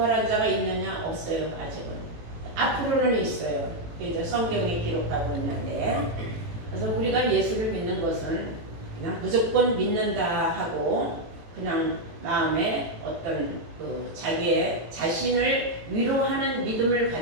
자가 있느냐? 없어요. 아직은. 앞으로는 있어요. 이제 성경에 기록하고 있는데 그래서 우리가 예수를 믿는 것은 그냥 무조건 믿는다 하고 그냥 마음에 어떤 자기의 자신을 위로하는 믿음을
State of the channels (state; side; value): late; left; 18 ms